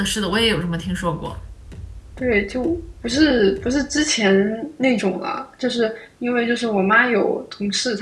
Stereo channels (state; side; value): identical; both; correlation 1.00